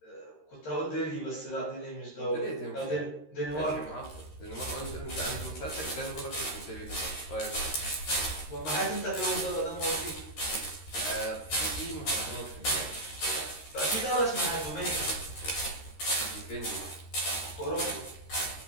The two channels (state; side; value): late; right; 13 ms